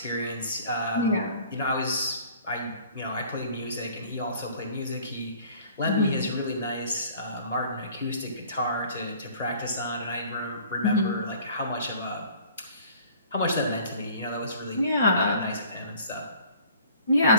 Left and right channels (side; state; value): both; inverted; correlation -0.51